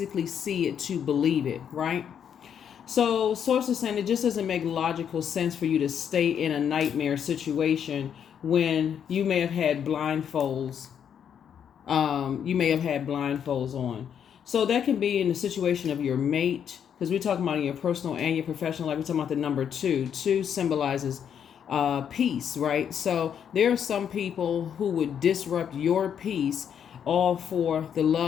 see it to believe it, right? So sources saying it just doesn't make logical sense for you to stay in a nightmare situation when you may have had blindfolds. On. So that can be in the situation of your mate, because we're talking about in your personal and your professional life. We're talking about the number two. Two symbolizes peace, right? So there are some people who would disrupt your peace all for the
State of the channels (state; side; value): quieter; right; 8.4 dB